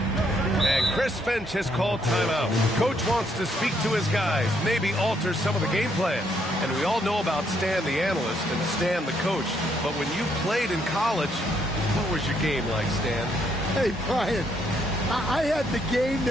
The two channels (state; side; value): normal; both; correlation 0.72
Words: Chris Finch has called timeout. Coach wants to speak to his guys, maybe alter some of the game plan. And we all know about Stan the analyst and Stan the coach. But when you played in college, what was your game like, Stan? Hey, Brian, I had the game